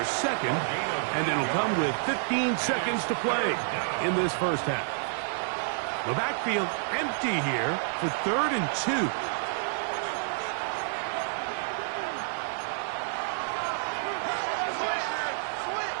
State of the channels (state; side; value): silent; left; digital silence